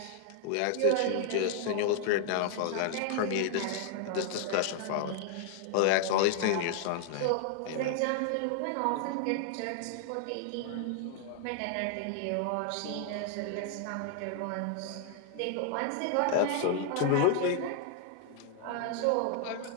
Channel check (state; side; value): different; both; correlation 0.00